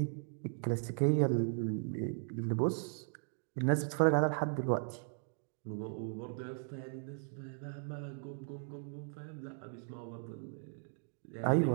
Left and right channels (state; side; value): silent; left; 53 dB below the other